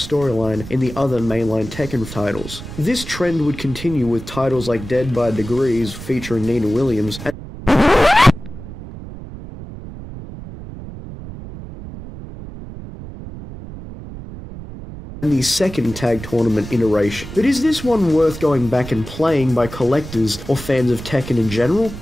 in the other mainline Tekken titles. This trend would continue with titles like Dead by Degrees featuring Nina Williams, and the second tag tournament iteration. But is this one worth going back and playing by collectors or fans of Tekken in general?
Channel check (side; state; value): right; noise; rumble, 12 dB below the sound